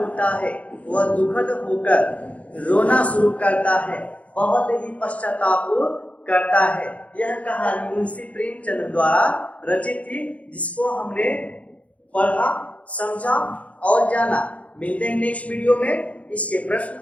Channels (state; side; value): late; right; 0.066 ms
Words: है, वह दुखद होकर रोना शुरू करता है, बहुत ही पश्चाताप करता है। यह कहानी मुंशी प्रेमचंद द्वारा रचित थी, जिसको हमने पढ़ा, समझा और जाना। मिलते हैं नेक्स्ट वीडियो में इसके प्रश्न